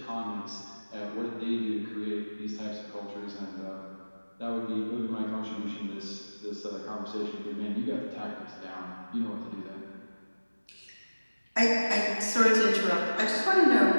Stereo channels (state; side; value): inverted; both; correlation -1.00